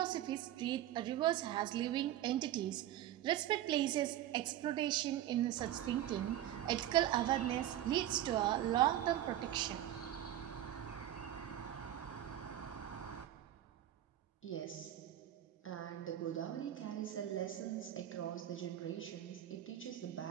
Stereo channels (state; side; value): quieter; left; 12.6 dB